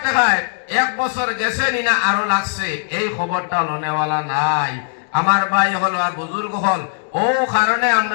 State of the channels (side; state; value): right; silent; digital silence